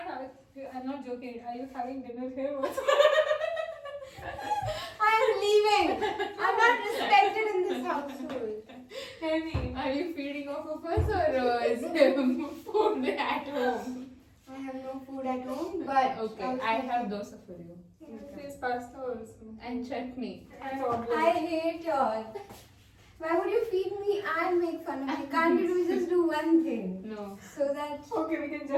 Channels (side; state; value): both; identical; correlation 1.00